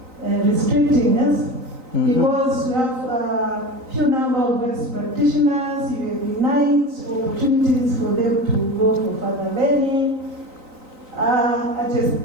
restricting us because we have a few number of best practitioners, you have denied opportunities for them to go for further learning. At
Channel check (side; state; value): left; late; 3.9 ms